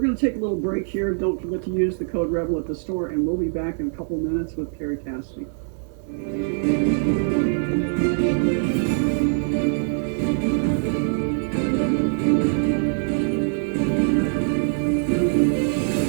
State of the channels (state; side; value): silent; left; digital silence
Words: going to take a little break here. Don't forget to use the code REBEL at the store, and we'll be back in a couple minutes with Kerry Cassidy.